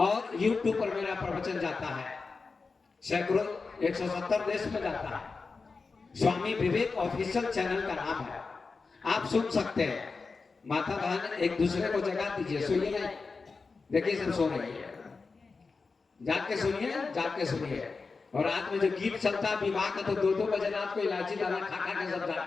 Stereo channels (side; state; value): right; quieter; 4.4 dB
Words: यूट्यूब पर मेरा प्रवचन जाता है। सैकड़ों 170 देश में जाता है। स्वामी विवेक ऑफिशियल चैनल का नाम है, आप सुन सकते हैं। माता बहन एक दूसरे को जगा दीजिए, सोइए नहीं, देखिए सब सो रही है, जाग के सुनिए, जाग के सुनिए। और रात में जो गीत चलता है विवाह का, तो 2-2 बजे रात को इलायची दाना खा खा के सब जाग